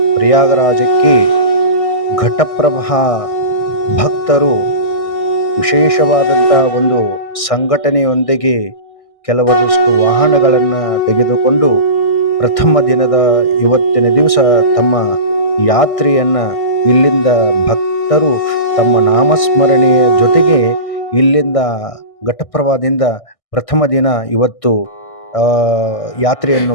ಪ್ರಯಾಗರಾಜಕ್ಕೆ ಘಟಪ್ರಭಾ ಭಕ್ತರು ವಿಶೇಷವಾದಂಥ ಒಂದು ಸಂಘಟನೆಯೊಂದಿಗೆ ಕೆಲವೊಂದಷ್ಟು ವಾಹನಗಳನ್ನು ತೆಗೆದುಕೊಂಡು ಪ್ರಥಮ ದಿನದ ಇವತ್ತಿನ ದಿವಸ ತಮ್ಮ ಯಾತ್ರೆಯನ್ನು ಇಲ್ಲಿಂದ ಭಕ್ತರು ತಮ್ಮ ನಾಮಸ್ಮರಣೆಯ ಜೊತೆಗೆ ಇಲ್ಲಿಂದ ಘಟಪ್ರಭಾದಿಂದ ಪ್ರಥಮ ದಿನ ಇವತ್ತು ಯಾತ್ರೆಯನ್ನು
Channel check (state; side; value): late; right; 1.6 ms